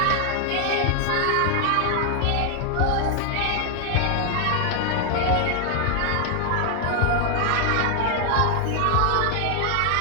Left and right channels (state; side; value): different; both; correlation 0.00